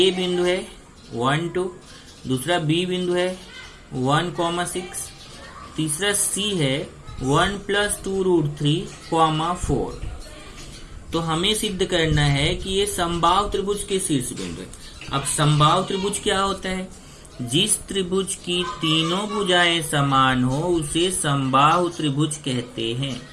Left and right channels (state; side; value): identical; both; correlation 1.00